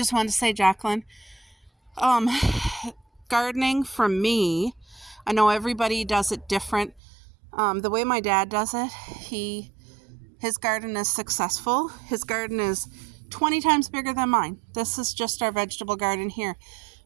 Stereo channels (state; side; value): drops out; left; at 7.0 s